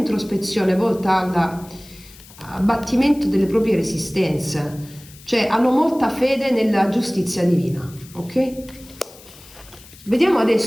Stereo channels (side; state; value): left; noise; hiss, 21 dB below the sound